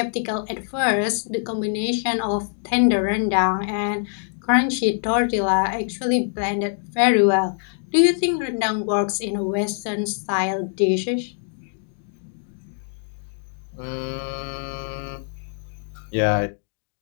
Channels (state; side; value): silent; right; digital silence